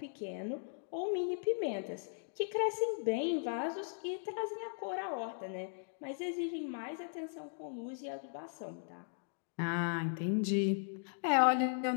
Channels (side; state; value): right; silent; digital silence